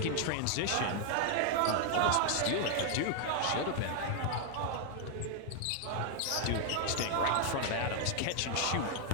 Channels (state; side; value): different; both; correlation 0.00